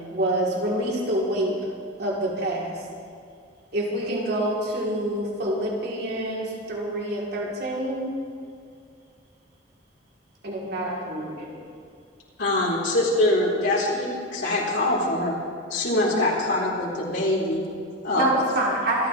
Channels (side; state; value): both; normal; correlation 0.14